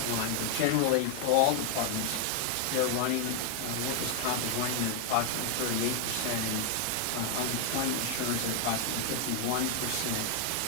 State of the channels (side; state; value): both; different; correlation 0.00